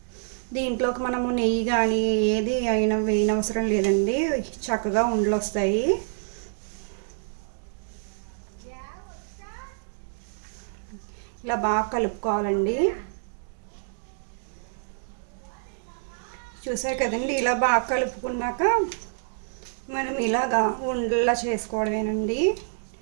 దీంట్లోకి మనము నెయ్యి కానీ ఏది అయినా వేయనవసరం లేదండి. చక్కగా ఉండలు వస్తాయి. ఇలా బాగా కలుపుకోవాలండి. చూసారు కదండి. ఇలా బాగా కలుపుకున్నాక మనం ఇలాగా ఉండలా చేసుకోవడమేనండి.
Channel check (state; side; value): silent; left; digital silence